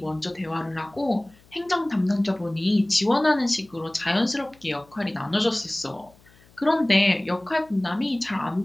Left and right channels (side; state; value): left; noise; hum, 29 dB below the sound